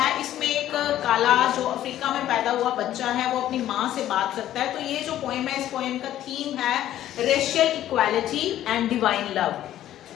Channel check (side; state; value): right; quieter; 12.5 dB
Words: इसमें एक काला जो अफ्रीका में पैदा हुआ बच्चा है वो अपनी माँ से बात करता है. तो ये जो पोएम है इस पोएम का थीम है racial equality and divine love.